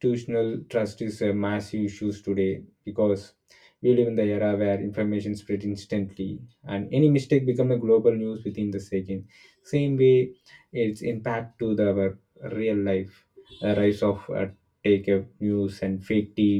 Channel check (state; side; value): identical; both; correlation 1.00